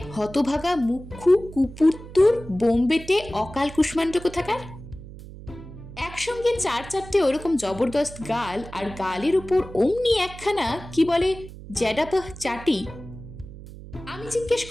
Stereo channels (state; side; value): noise; right; hum, 15 dB below the sound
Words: হতভাগা মুখ্যু কুপুত্তুর বোম্বেতে অকাল কুষ্মাণ্ড কোথাকার। একসঙ্গে 4-4টে ওরকম জবরদস্ত গাল, আর গালের উপর অমনি একখানা কি বলে জ্যাডাপহ চাটি। আমি জিজ্ঞেস